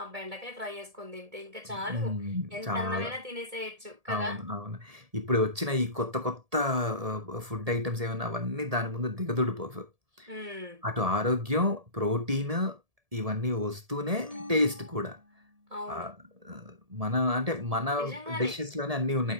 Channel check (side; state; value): left; late; 1.7 ms